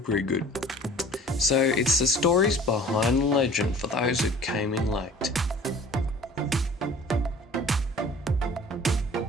it's the stories behind the legend for those who came in late.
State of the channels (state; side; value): normal; both; correlation 0.47